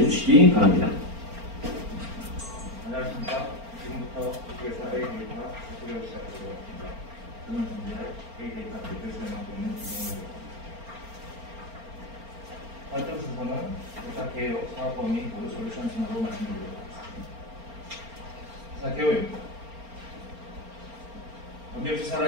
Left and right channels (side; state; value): left; late; 4.4 ms